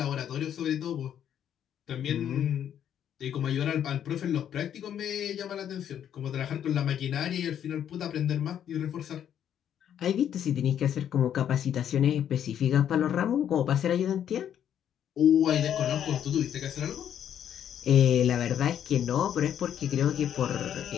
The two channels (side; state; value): right; quieter; 9.6 dB